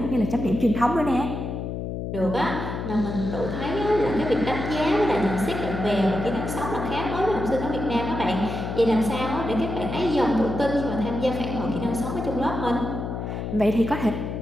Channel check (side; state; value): left; noise; hum, 5 dB below the sound